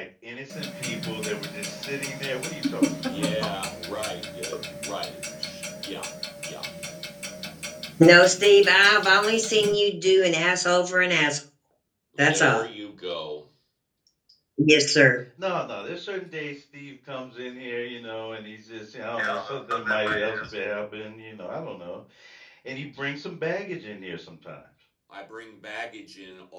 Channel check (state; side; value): identical; both; correlation 1.00